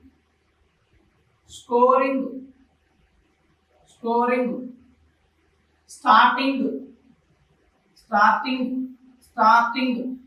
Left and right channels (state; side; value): identical; both; correlation 1.00